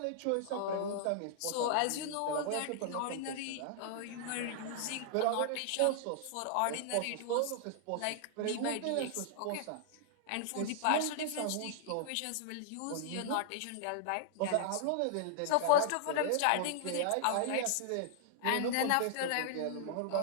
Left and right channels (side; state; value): both; different; correlation 0.00